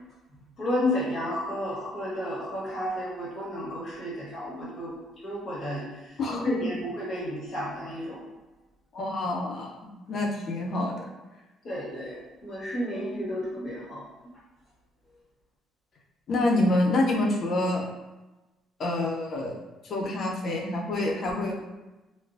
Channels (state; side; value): normal; both; correlation 0.69